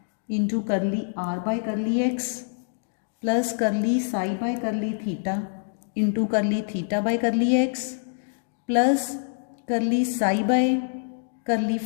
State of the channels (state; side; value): silent; right; digital silence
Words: into curly r by curly x plus curly psi by curly theta into curly theta by curly x plus curly psi by curly